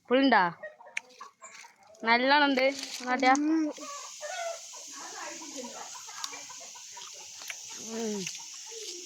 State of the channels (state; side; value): identical; both; correlation 1.00